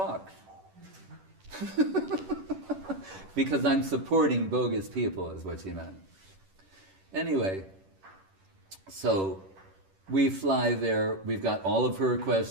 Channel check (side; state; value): left; late; 10 ms